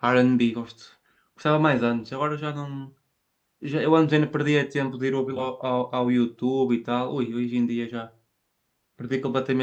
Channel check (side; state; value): both; identical; correlation 1.00